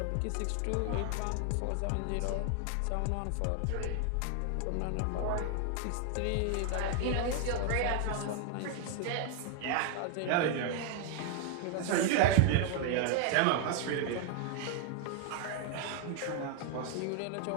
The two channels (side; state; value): both; different; correlation 0.00